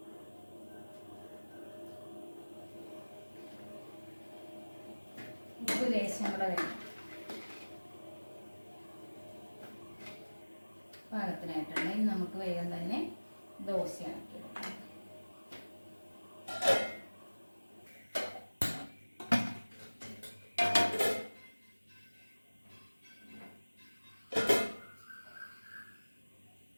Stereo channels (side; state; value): both; inverted; correlation -1.00